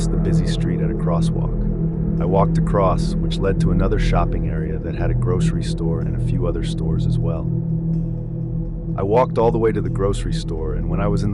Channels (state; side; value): identical; both; correlation 1.00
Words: the busy street at a crosswalk. I walked across, which led to another shopping area that had a grocery store and a few other stores as well. I walked all the way to the grocery store, and when I was in